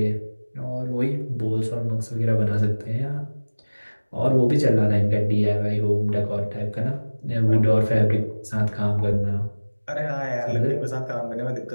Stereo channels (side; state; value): both; inverted; correlation -1.00